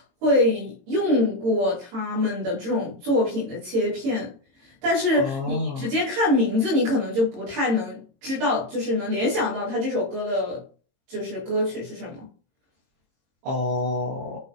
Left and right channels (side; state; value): left; late; 22 ms